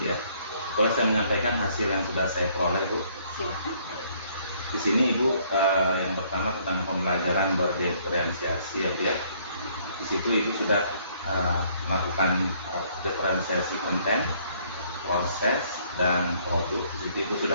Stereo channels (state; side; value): inverted; both; correlation -0.63